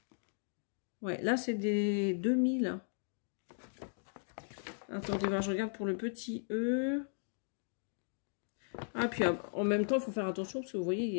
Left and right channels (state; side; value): silent; right; digital silence